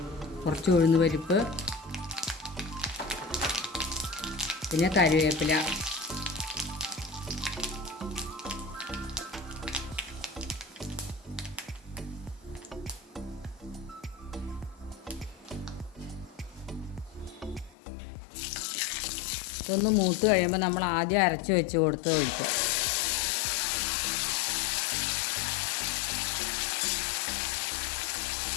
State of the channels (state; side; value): drops out; right; at 17.8 s